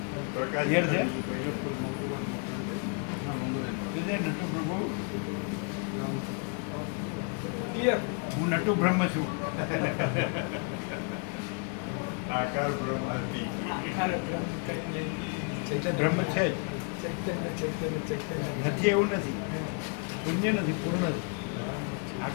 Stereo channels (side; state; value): right; quieter; 37.9 dB